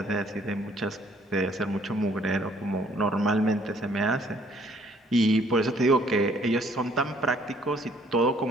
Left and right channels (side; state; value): both; normal; correlation 0.62